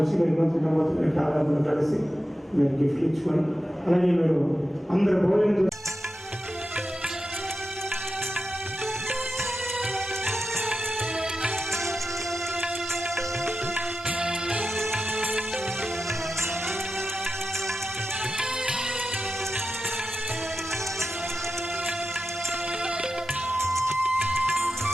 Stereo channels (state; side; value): normal; both; correlation 0.91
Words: మీరు నూతన కాలంలో కలిసి మీరు గిఫ్ట్ ఇచ్చుకొని, అలాగే మీరు అందరు భోజనం